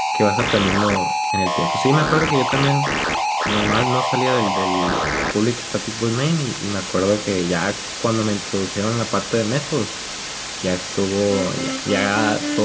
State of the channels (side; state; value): both; identical; correlation 1.00